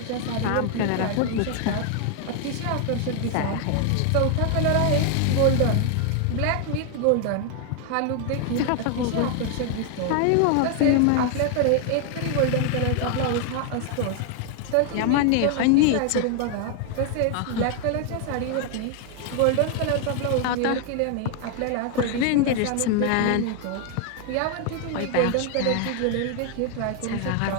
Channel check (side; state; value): both; different; correlation 0.00